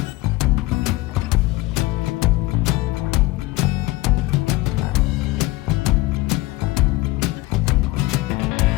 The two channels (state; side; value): quieter; right; 20.0 dB